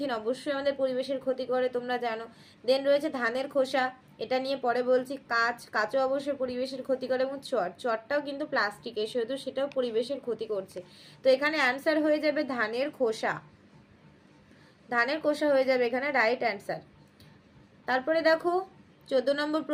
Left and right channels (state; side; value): identical; both; correlation 1.00